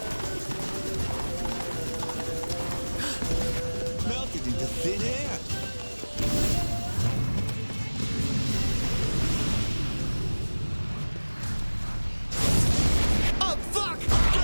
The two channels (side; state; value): both; inverted; correlation -1.00